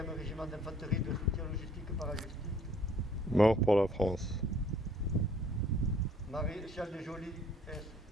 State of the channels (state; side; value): normal; both; correlation 0.58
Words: régiment d'infanterie de soutien logistique parachutistes. Mort pour la France. Maréchal des Jolis